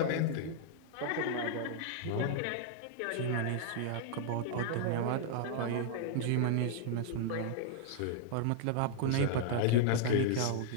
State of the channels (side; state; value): both; different; correlation -0.01